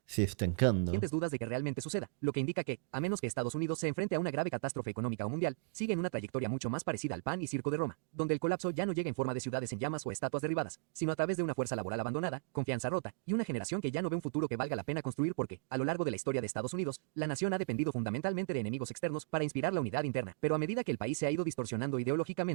se estancando. Dudas de que realmente suceda, lo que indica que, a menos que Estados Unidos se enfrente a una grave catástrofe económica o mundial, sigue en una trayectoria mucho más parecida al pan y circo de Roma, donde el colapso ya no llega en forma de ciudades en llamas o estatuas derribadas, sino a través de una fuerza laboral abandonada, confianza rota, y una generación que ya no ve un futuro que valga la pena construir porque, a lo largo de la historia de Estados Unidos, la nación ha dependido fundamentalmente de enemigos externos para inspirar la unidad interna. Pero a medida que el país se ha ido distorsionando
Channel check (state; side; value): silent; left; digital silence